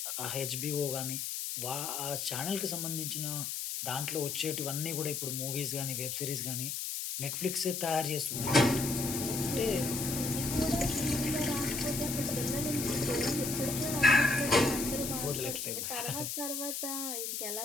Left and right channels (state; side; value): noise; left; hiss, 3 dB below the sound